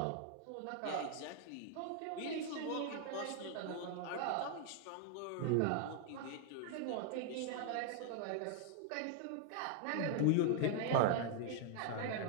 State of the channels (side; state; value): both; different; correlation 0.00